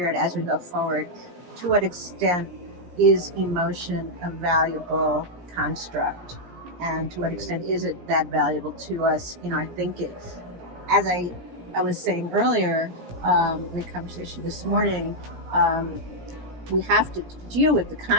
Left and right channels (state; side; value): late; left; 17 ms